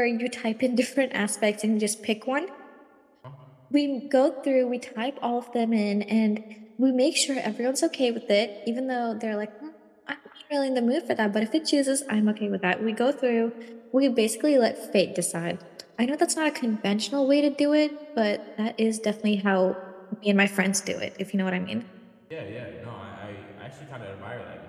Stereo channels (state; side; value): identical; both; correlation 1.00